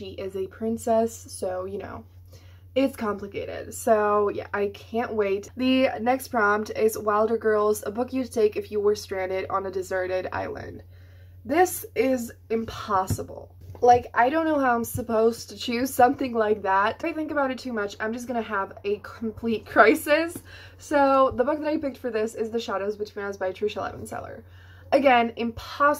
is a princess, so you know, it's complicated. So yeah, I can't wait. The next prompt is Wilder Girls, a book you'd take if you were stranded on a deserted island. This is impossible. Like, I don't know how I'm supposed to choose something like that. If I think about it too much, I'm just gonna have a complete crisis. So the book that I picked for this is The Shadows Between Us by Tricia Levenseller. Again,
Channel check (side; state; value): both; identical; correlation 1.00